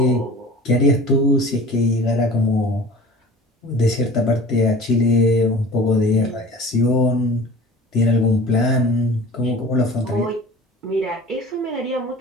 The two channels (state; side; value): normal; both; correlation 0.41